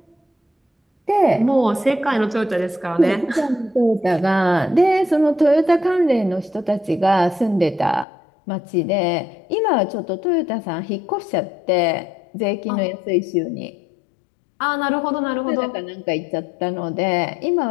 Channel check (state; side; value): drops out; right; at 8.1 s